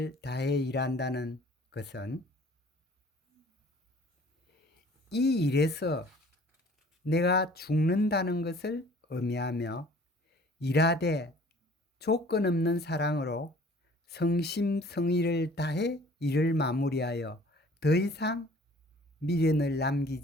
다해 일한다는 것은 이 일에서 내가 죽는다는 것을 의미하며, 일하되 조건 없는 사랑으로 성심성의를 다해 일을 마무리하여 더 이상 미련을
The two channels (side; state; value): both; normal; correlation 0.52